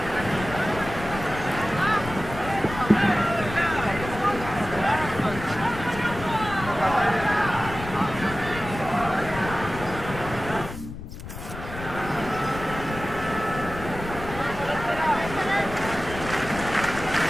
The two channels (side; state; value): left; noise; rumble, 10 dB below the sound